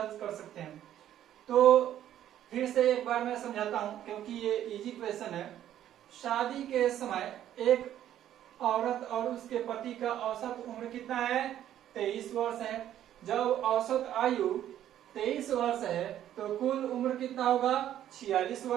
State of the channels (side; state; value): left; quieter; 11.5 dB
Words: कर सकते हैं। तो फिर से एक बार मैं समझाता हूं क्योंकि ये इजी क्वेश्चन है। शादी के समय एक औरत और उसके पति का औसत उम्र कितना है? 23 वर्ष है। जब औसत आयु 23 वर्ष है तो कुल उम्र कितना होगा? 46